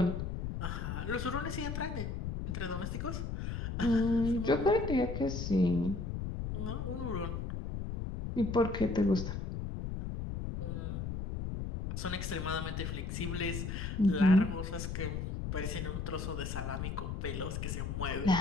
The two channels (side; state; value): left; noise; rumble, 4 dB below the sound